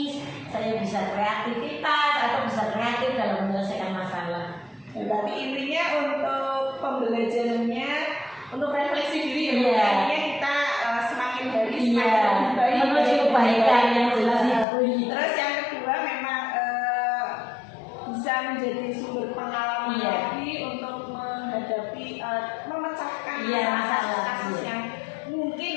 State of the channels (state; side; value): drops out; right; at 14.7 s